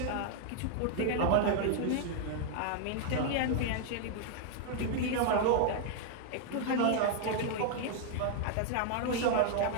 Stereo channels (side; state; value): both; different; correlation -0.01